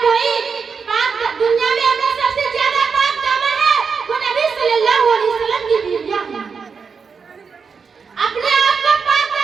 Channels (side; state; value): left; quieter; 5.6 dB